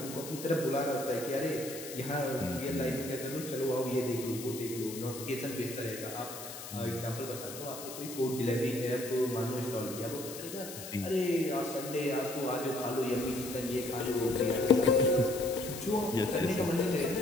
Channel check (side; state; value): left; noise; hiss, 11 dB below the sound